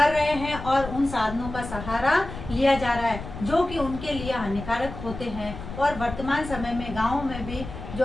रहे हैं और उन साधनों का सहारा लिया जा रहा है जो कि उनके लिए हानिकारक होते हैं। और वर्तमान समय में गाँव में भी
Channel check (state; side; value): noise; left; rumble, 10 dB below the sound